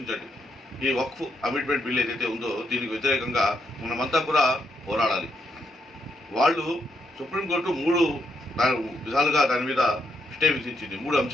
ఈ వక్ఫ్ అమెండ్మెంట్ బిల్ ఏదైతే ఉందో దీనికి వ్యతిరేకంగా మనమంతా కూడా పోరాడాలి. వాళ్ళు సుప్రీంకోర్టు 3 విధాలుగా దాని మీద స్టే విధించింది, 3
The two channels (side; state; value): both; normal; correlation 0.78